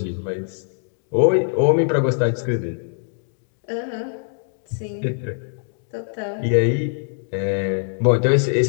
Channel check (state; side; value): silent; right; digital silence